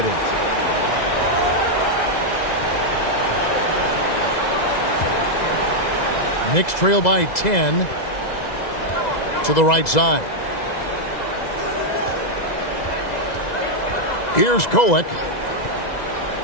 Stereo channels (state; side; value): late; right; 2.0 ms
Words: Knicks trail by 10 to the right side. Here's Kolek.